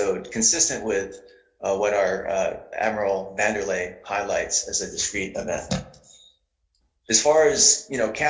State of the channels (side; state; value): both; identical; correlation 1.00